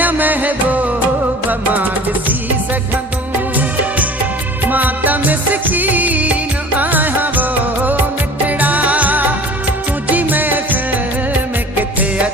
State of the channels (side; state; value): both; normal; correlation 0.45